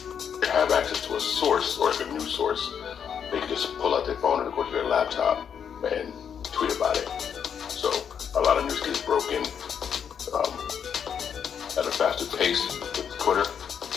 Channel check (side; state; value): right; quieter; 7.7 dB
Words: have access to a source or like a news source. They can just pull out their phone and go to their laptop and tweet about it. So a lot of news gets broken at a faster pace with Twitter.